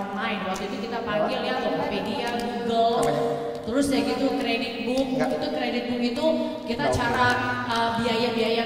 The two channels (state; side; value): identical; both; correlation 1.00